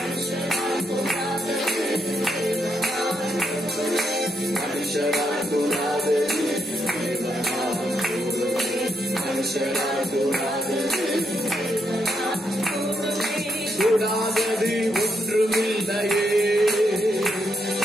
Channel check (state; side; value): normal; both; correlation 0.79